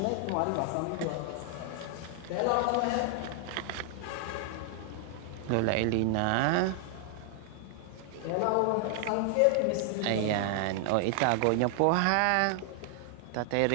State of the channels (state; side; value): different; both; correlation 0.00